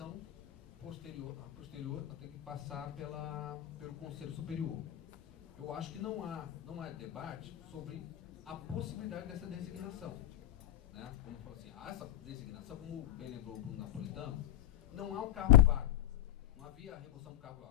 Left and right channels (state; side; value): quieter; right; 12.8 dB